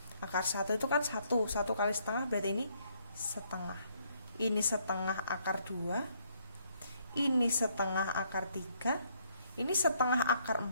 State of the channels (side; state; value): both; inverted; correlation -0.69